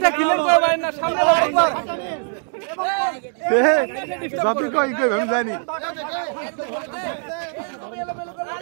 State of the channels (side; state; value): left; silent; 56 dB below the other